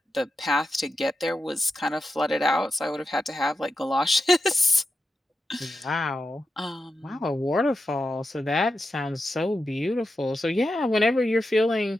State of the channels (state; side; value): normal; both; correlation 0.88